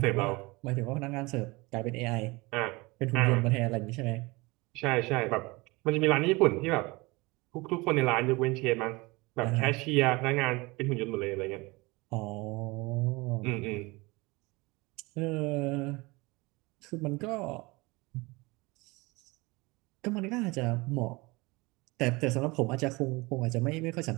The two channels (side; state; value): left; quieter; 24.0 dB